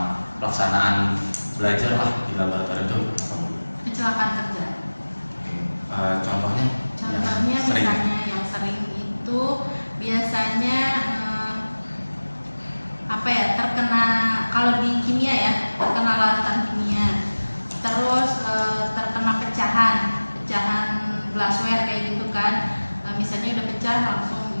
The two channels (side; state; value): both; inverted; correlation -1.00